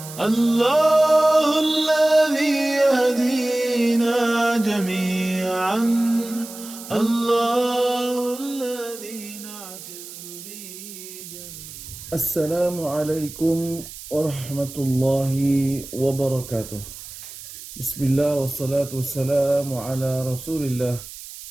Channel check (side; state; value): right; noise; hiss, 14 dB below the sound